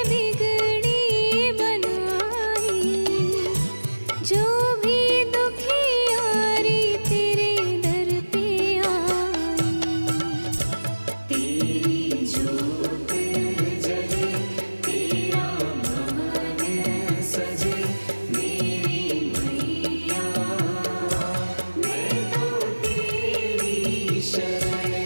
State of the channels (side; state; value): both; inverted; correlation -1.00